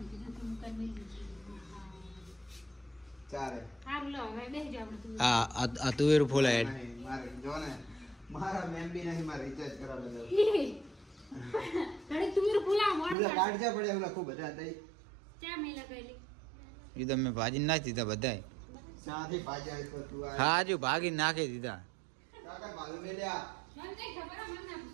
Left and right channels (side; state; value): left; drops out; at 13.2 s